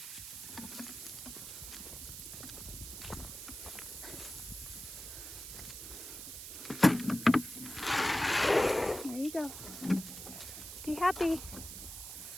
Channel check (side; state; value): right; noise; hiss, 10 dB below the sound